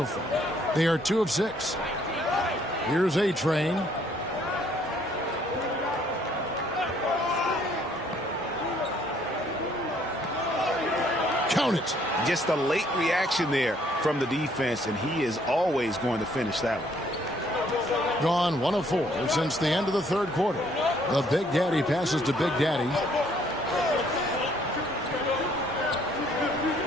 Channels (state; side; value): normal; both; correlation 0.64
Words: far. They are 2 of 6. Here's A-Train. Count it. Just a late reaction there from the defense, and he is always going to finish that one. Gone 1 of 4 since the end of the third quarter. The Big Daddy passes to Big Daddy.